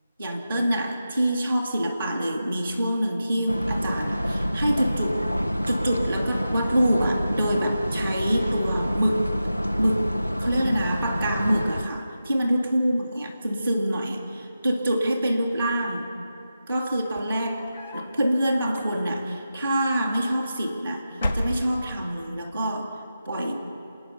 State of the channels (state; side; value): inverted; both; correlation -0.91